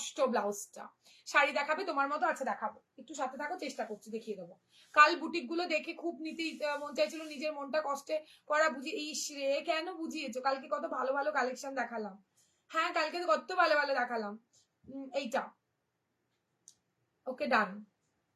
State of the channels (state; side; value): identical; both; correlation 1.00